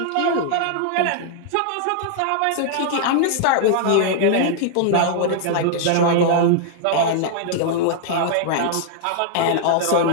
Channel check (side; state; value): both; different; correlation -0.01